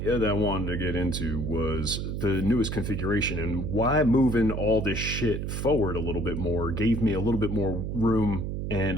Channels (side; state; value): right; noise; hum, 3 dB below the sound